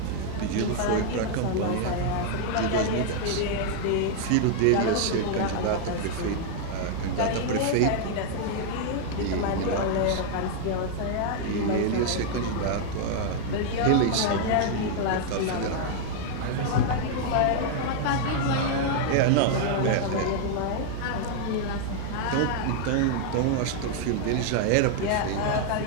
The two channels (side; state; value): both; different; correlation 0.00